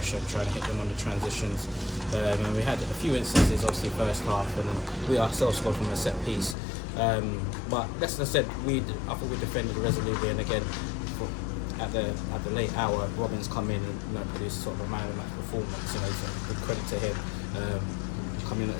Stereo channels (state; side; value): drops out; right; at 6.6 s